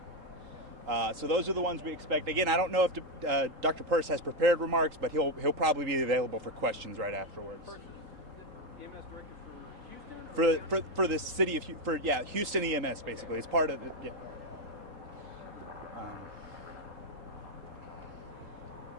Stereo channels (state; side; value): late; left; 3.8 ms